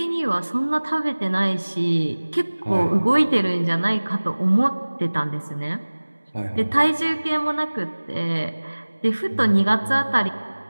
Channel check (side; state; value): both; inverted; correlation -1.00